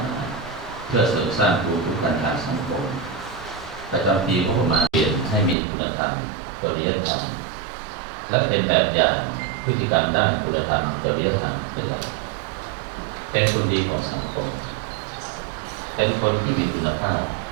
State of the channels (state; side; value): drops out; left; at 5.6 s